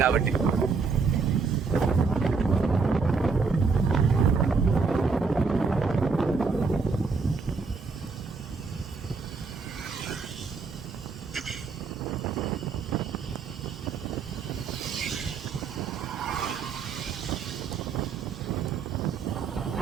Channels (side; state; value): left; quieter; 4.8 dB